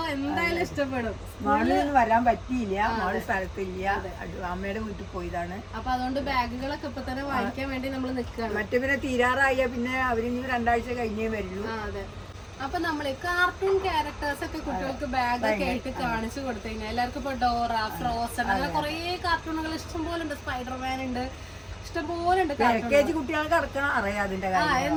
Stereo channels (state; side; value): identical; both; correlation 1.00